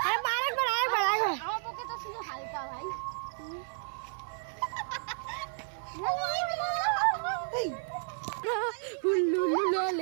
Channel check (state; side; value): silent; left; 56 dB below the other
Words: আমার পক্ষে তো শুধু হালকা ভাই।